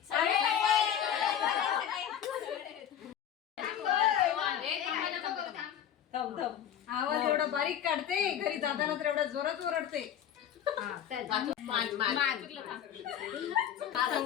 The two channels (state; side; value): quieter; right; 9.7 dB